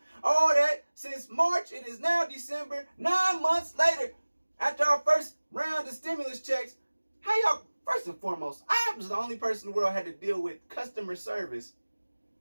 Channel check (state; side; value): inverted; both; correlation -1.00